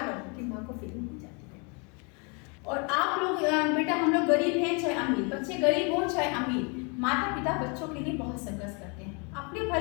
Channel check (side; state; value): right; quieter; 33.4 dB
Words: रहो कि माँ को फीलिंग हो जाती है। और आप लोग बेटा, हम लोग गरीब हैं चाहे अमीर, बच्चे गरीब हो चाहे अमीर, माता पिता बच्चों के लिए बहुत संघर्ष करते हैं। अपने